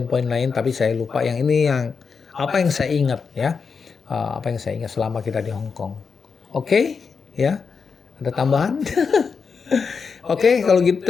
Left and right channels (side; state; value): right; quieter; 5.5 dB